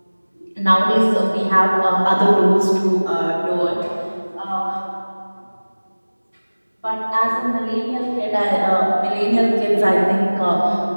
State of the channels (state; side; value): inverted; both; correlation -1.00